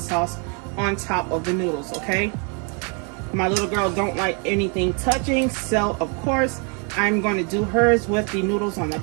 on top of the noodles, okay? My little girl don't like anything touching, so of course I'm going to do hers with the noodles on the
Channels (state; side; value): quieter; left; 36.1 dB